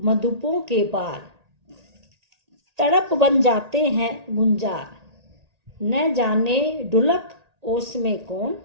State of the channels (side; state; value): left; late; 1.8 ms